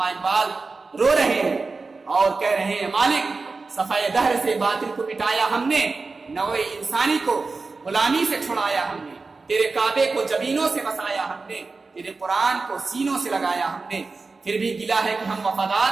اقبال رو رہے ہیں اور کہہ رہے ہیں، مالک صفحہ دہر سے باطل کو مٹایا ہم نے، نوع انسانی کو غلامی سے چھڑایا ہم نے، تیرے کعبے کو جبینوں سے بسایا ہم نے، تیرے قرآن کو سینوں سے لگایا ہم نے، پھر بھی گلا ہے کہ ہم وفادار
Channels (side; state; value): left; quieter; 4.0 dB